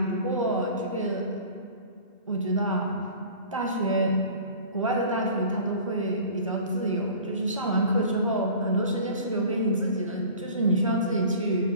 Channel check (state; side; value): inverted; both; correlation -0.42